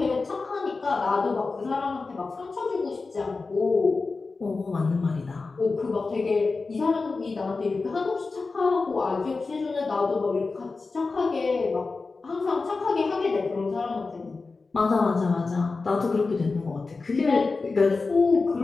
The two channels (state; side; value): quieter; right; 4.0 dB